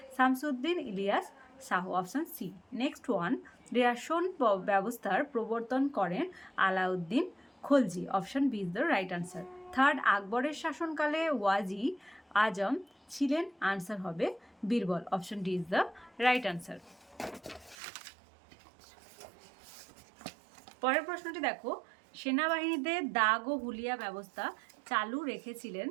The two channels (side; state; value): left; drops out; at 17.8 s